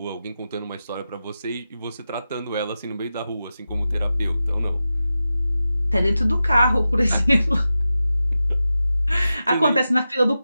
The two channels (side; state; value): both; inverted; correlation -0.92